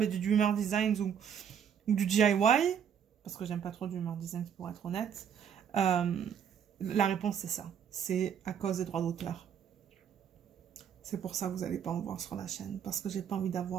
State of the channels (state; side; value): quieter; left; 8.2 dB